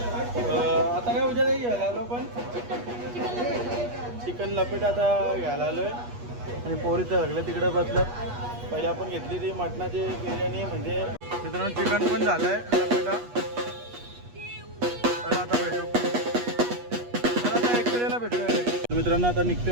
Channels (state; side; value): late; left; 8.3 ms